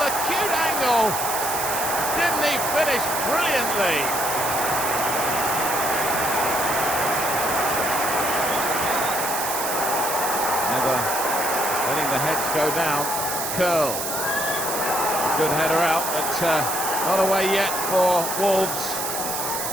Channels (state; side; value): noise; right; hiss, 3 dB below the sound